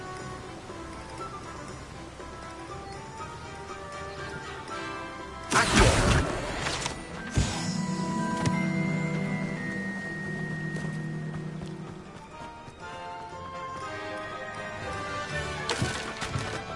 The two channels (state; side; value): identical; both; correlation 1.00